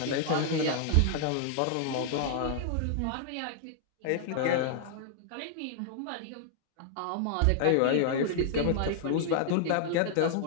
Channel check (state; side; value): different; both; correlation -0.01